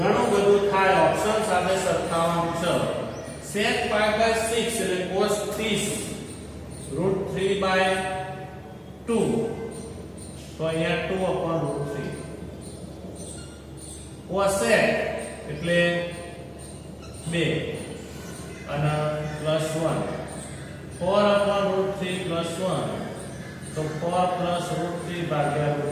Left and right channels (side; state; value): both; identical; correlation 1.00